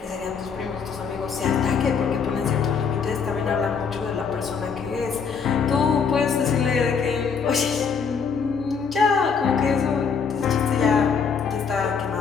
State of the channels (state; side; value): quieter; right; 6.0 dB